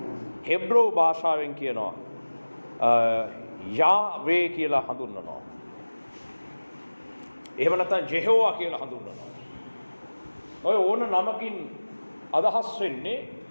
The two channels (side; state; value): both; inverted; correlation -1.00